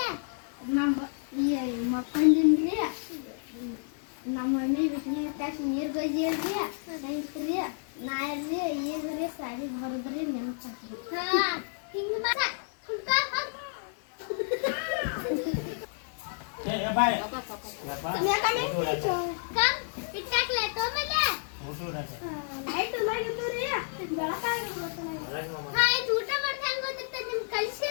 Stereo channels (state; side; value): silent; right; 58 dB below the other